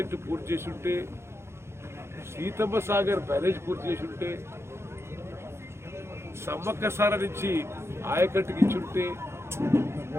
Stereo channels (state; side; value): late; left; 0.13 ms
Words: పూర్తి చేసి ఉంటే, సీతమ్మ సాగర్ బ్యారేజ్ పూర్తి చేసి ఉంటే, సమ్మక్కసార నుంచి ఆయకట్టుకి ఇచ్చుంటే,